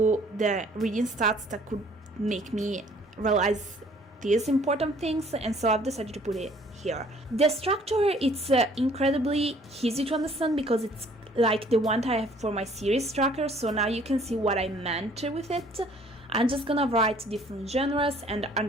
the reading stats that could make me realize these important things, and so I've decided to put it here. The structure, it's incredibly easy to understand because it's like the one that I have for my series tracker, so now you can see what I meant with it. I'm just gonna write different genres and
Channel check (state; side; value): normal; both; correlation 0.57